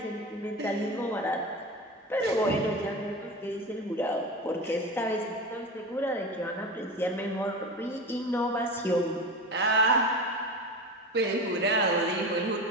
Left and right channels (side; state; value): both; normal; correlation 0.28